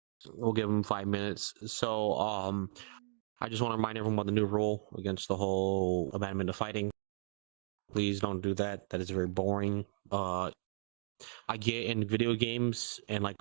We'll give him 5 minutes. So, I just want to remind everyone about the new rule against the whole abandonment of fighting. Please don't do that. That is very boring. I get in video games and like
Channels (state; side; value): silent; left; digital silence